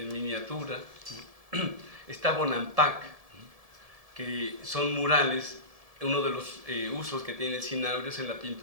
miniatura, ¿no? Está Bonampak, ¿no? Que son murales. Uno de los usos que tiene el cinabrio es en la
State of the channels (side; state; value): left; late; 1.7 ms